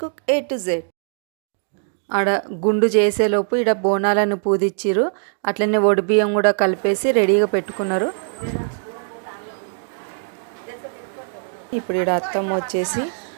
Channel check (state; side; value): silent; left; 65 dB below the other